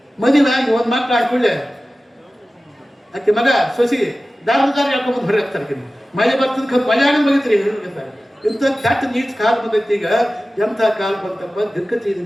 ಮದುವೆ ಆಗಿ ಒಂದು ಮಕ್ಕಳು ಹಾಕೊಳ್ಳೆ ಆಕೆ ಮಗ ಸೊಸಿ ದಾರ ಹೇಳ್ಕೊಂಬಂದು ಹೊರಗೆ ಹಾಕ್ತಾರೆ. ಮಳೆ ಬರ್ತದ ಮಳೆ ಆಗ ಬಗಿತ್ರಿ ಹೇಳ್ತಾರೆ. ಇಂಥ ಕೆಟ್ಟ ನೀಚ್ ಕಾಲ ಬಂದೈತಿ. ಈಗ ಎಂಥ ಕಾಲ ಬಂತಪ್ಪ, ದಿಕ್ಕತಿ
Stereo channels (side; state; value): both; normal; correlation 0.96